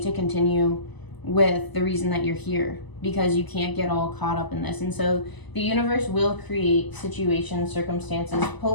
to continue with the reason that you're here, because you can't get all caught up in this. And so the universe will create situations, circumstances,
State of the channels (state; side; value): late; right; 1.0 ms